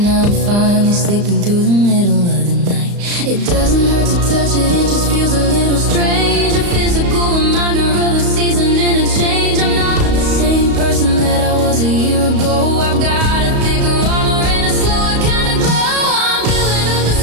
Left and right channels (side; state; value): left; late; 35 ms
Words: I'm finally sleeping through the middle of the night. It doesn't hurt to touch it, it just feels a little strange, a physical reminder of a season and a change. I'm not the same person that I was a year ago. I've got a thicker armor and a slower kind of glow. I'm building up the